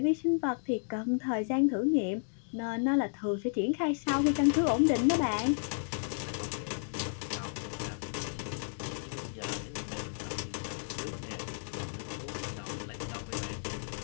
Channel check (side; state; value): right; silent; digital silence